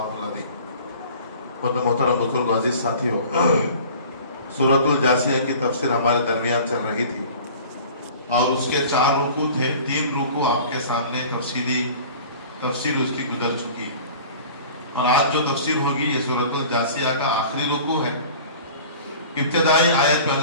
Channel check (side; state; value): both; inverted; correlation -0.44